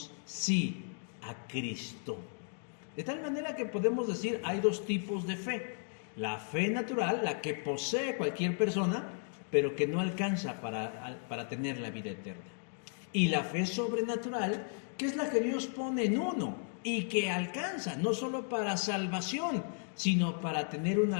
sí a Cristo. De tal manera que podemos decir, hay dos tipos de fe. La fe natural, la que posee cualquier persona, pero que no alcanza para tener la vida eterna. Y la fe sobrenatural, que es la que Dios pone en uno y que alcanza no solo para salvación, sino para tener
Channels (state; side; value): silent; right; 55 dB below the other